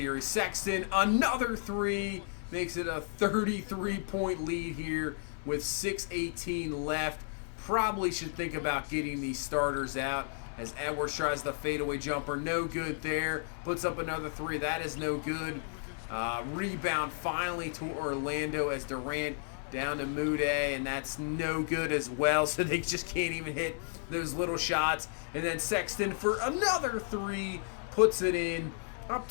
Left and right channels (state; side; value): silent; right; 56 dB below the other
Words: Sexton, another three, makes it a 33-point lead here with 6:18 left. Probably should think about getting these starters out as Edwards tries the fadeaway jumper. No good there. Puts up another three. That is no good. Rebound finally to Orlando as Durant down to Mude, and that's no good as well, so they just can't even hit those little shots. And then Sexton for another three, puts it in, up